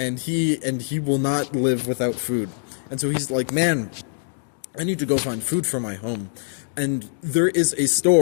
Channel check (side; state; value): right; silent; digital silence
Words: he will not live without food. And so he's like, man, I need to go find food for my home. And there is a